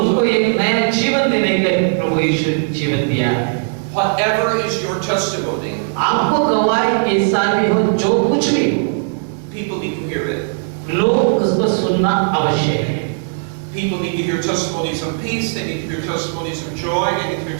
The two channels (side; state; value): left; silent; digital silence